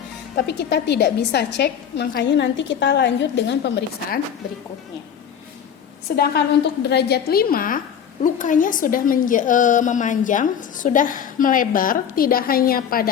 tapi kita tidak bisa cek, makanya nanti kita lanjut dengan pemeriksaan berikutnya. Sedangkan untuk derajat 5, lukanya sudah memanjang, sudah melebar, tidak hanya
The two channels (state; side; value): quieter; right; 8.3 dB